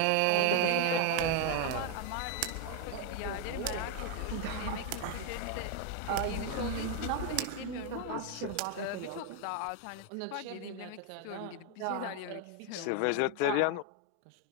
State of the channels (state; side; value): different; both; correlation 0.00